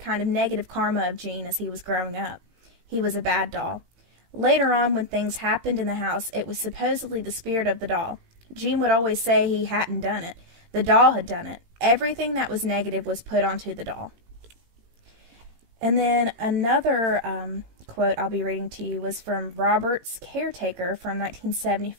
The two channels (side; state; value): left; late; 18 ms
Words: of negative karma of Gene as he was growing up. He was a bad doll. Later on, when things happened in the house, it was supposedly the spirit of the doll. Gene would always say he hadn't done it. The doll had done it. Everything that was negative was put onto the doll. And then another quote I'll be reading to you was from Robert's caretaker from